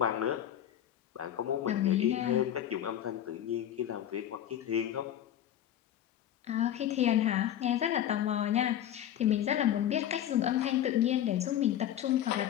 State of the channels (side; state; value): right; quieter; 11.0 dB